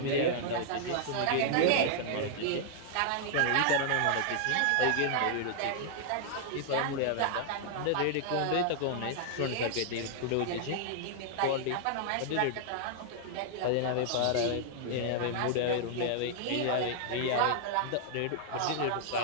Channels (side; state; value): both; different; correlation -0.01